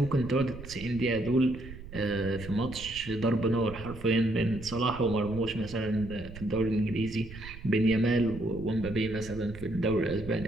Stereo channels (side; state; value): right; noise; rumble, 14 dB below the sound